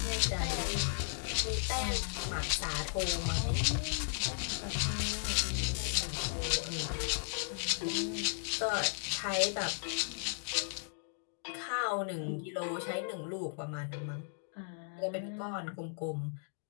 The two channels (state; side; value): silent; right; digital silence